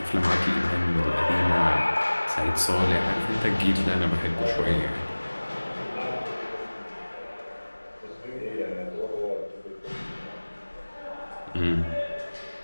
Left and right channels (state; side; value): inverted; both; correlation -1.00